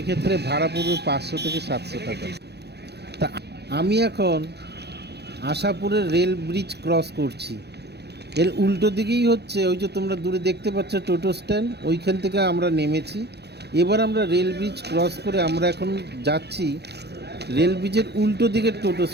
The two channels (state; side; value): late; left; 0.48 ms